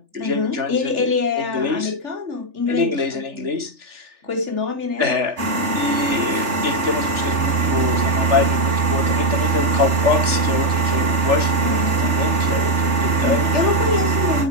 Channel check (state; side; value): late; left; 3.4 ms